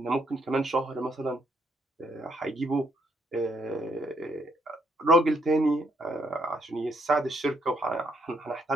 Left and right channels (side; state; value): both; normal; correlation 0.73